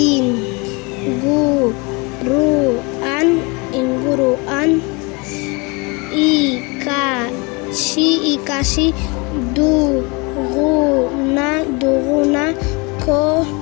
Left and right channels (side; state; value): right; quieter; 28.6 dB